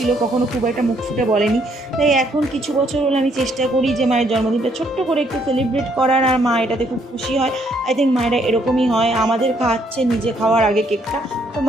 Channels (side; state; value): both; normal; correlation 0.69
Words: কখনো খুব একটা মুখ ফুটে বলেনি। তাই এখন কিছু বছর হলো আমি চেষ্টা করি যে মায়ের জন্মদিনটা ছোট্ট করে একটু সেলিব্রেট করার, আর মা এটাতে খুব খুশি হয়। আই থিঙ্ক মায়েরা এরকমই হয়, আমাদের খাওয়াচ্ছে নিজে খাওয়ার আগে কেকটা। তো